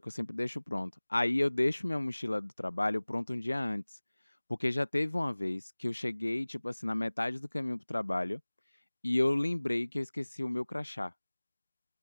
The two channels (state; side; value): inverted; both; correlation -1.00